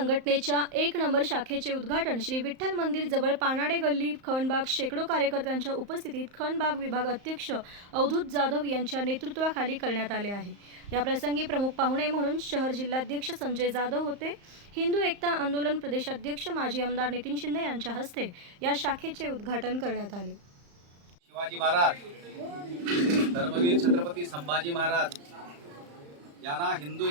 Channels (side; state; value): left; late; 35 ms